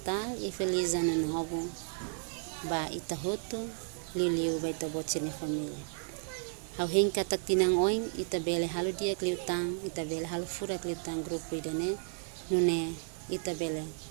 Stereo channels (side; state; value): left; silent; 56 dB below the other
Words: e feliz ano novo. Ba ita hoto, liu ba ita bot sira família. Hau heng katak tinang oing ita bele halu dia kliutang ita bele halu fura kliutang grupo idane nune ita bele